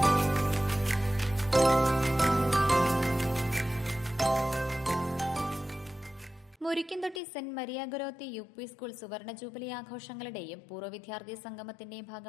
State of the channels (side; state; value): right; drops out; at 7.2 s